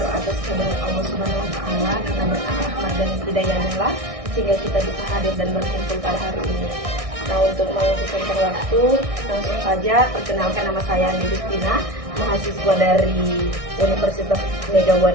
atas kehadirat Allah Subhanahu wa Ta'ala karena berkat rahmat dan hidayahnya sehingga kita bisa hadir dan berkumpul pada hari ini. Nah, untuk menghabiskan waktu, langsung saja perkenalkan, nama saya Andi Justina, mahasiswa dari Universitas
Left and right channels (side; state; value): left; late; 1.6 ms